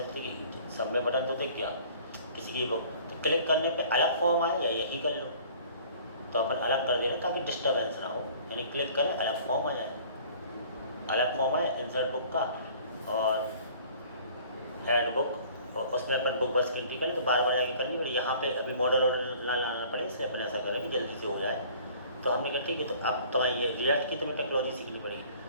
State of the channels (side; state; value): both; inverted; correlation -0.51